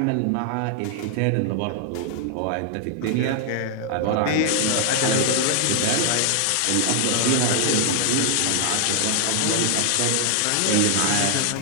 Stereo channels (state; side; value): different; both; correlation 0.00